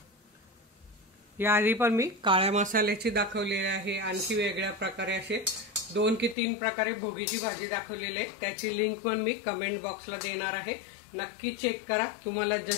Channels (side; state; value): right; drops out; at 6.4 s